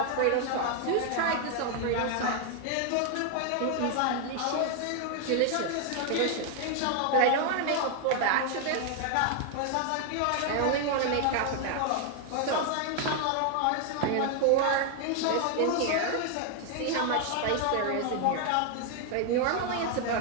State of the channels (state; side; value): different; both; correlation 0.00